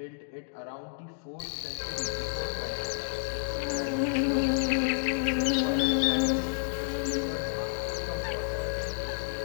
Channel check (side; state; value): right; silent; digital silence